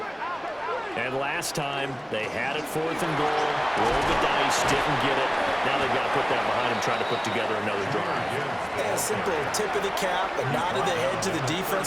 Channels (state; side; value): identical; both; correlation 1.00